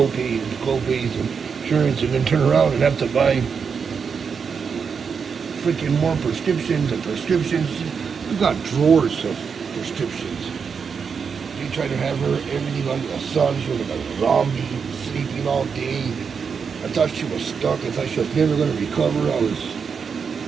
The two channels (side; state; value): left; quieter; 6.1 dB